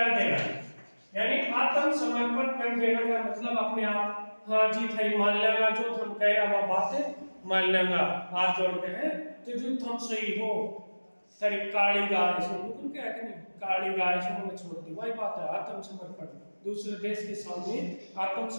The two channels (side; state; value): both; inverted; correlation -1.00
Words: देना। यानी आत्मसमर्पण कर देना का मतलब अपने आप, हाँ जी थई मान लेगा जो तुम कह रहा वो बात है, मान लेगा, हाथ जोड़ते हैं तो जो तुम सही हो, तेरी काली गाय सुन तुम क्या कि नहीं, काली गाय सुन छोड़ दी, वही बात है आत्मसमर्पण। दूसरे देश के सामने